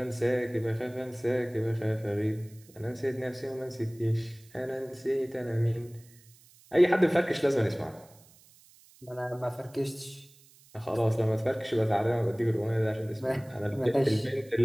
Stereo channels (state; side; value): noise; right; hiss, 26 dB below the sound